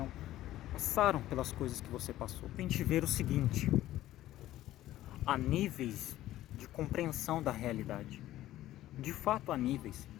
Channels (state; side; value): quieter; right; 14.4 dB